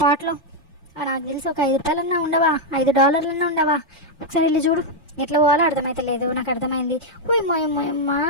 నాకు తెలిసి ఒక $5 ఉండవా, $5 ఉండవా. ఒకసారి వెళ్ళి చూడు. ఎట్లా పోవాలో అర్థమైతే లేదు. నాకు అర్థమైంది. ఓయమ్మా.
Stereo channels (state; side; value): normal; both; correlation 0.00